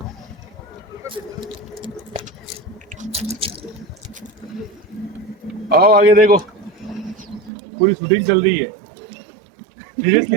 आओ आगे देखो, पूरी शूटिंग चल रही है।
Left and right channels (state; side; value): drops out; left; at 7.5 s